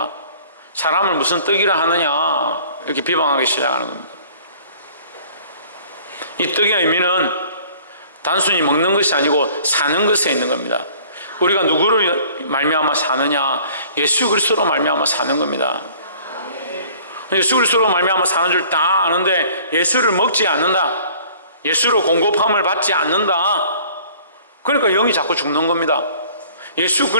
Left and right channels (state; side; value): inverted; both; correlation -0.52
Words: 사람을 무슨 떡이라 하느냐 이렇게 비방하기 시작하는 겁니다. 이 떡의 의미는 단순히 먹는 것이 아니고 사는 것에 있는 겁니다. 우리가 누구를 말미암아 사느냐? 예수 그리스도로 말미암아 사는 겁니다. 예수 그리스도로 말미암아 사는 줄 다 아는데 예수를 먹지 않는다, 예수로 공급함을 받지 않는다, 그러니까 영이 자꾸 죽는 겁니다. 예수